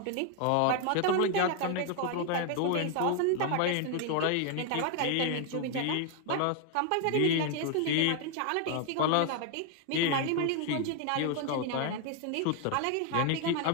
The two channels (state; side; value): different; both; correlation 0.00